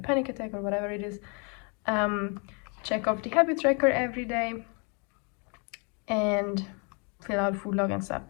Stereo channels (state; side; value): quieter; right; 35.5 dB